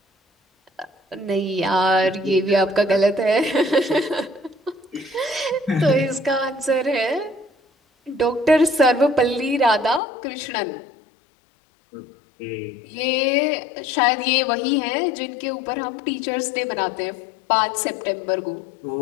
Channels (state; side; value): drops out; right; at 10.0 s